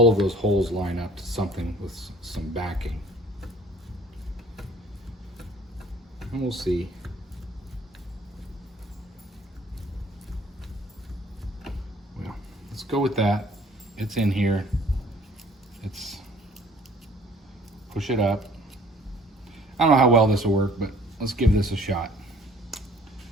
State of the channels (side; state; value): both; normal; correlation 0.55